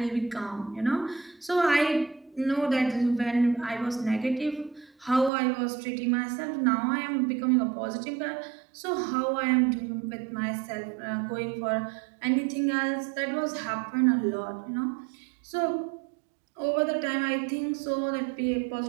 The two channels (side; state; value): left; drops out; at 5.3 s